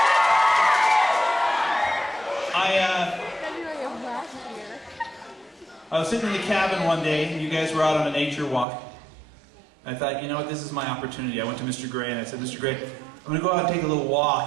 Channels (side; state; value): left; drops out; at 8.7 s